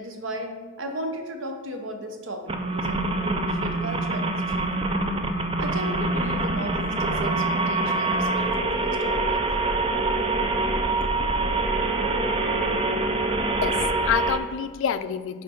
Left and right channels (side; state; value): both; normal; correlation 0.22